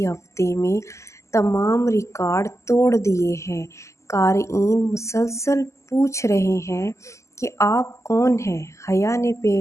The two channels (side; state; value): right; late; 0.14 ms